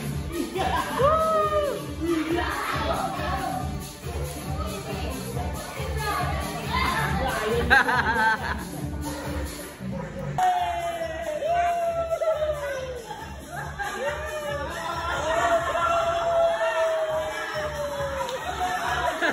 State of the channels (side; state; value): both; identical; correlation 1.00